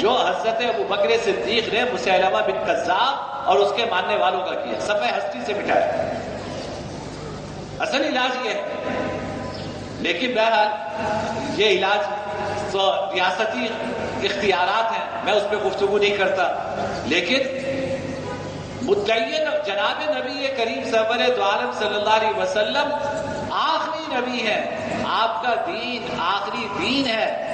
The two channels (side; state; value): both; identical; correlation 1.00